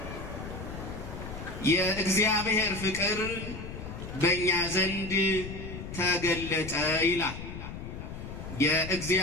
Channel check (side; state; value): left; noise; rumble, 9 dB below the sound